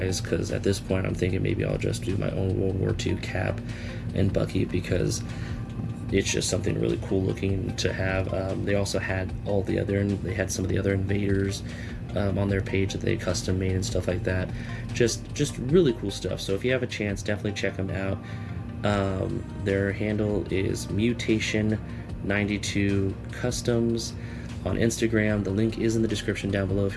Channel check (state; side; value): identical; both; correlation 1.00